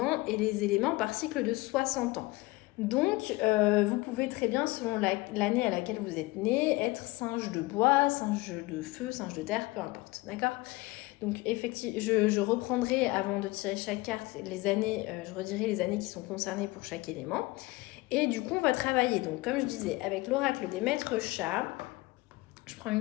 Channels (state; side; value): quieter; right; 21.7 dB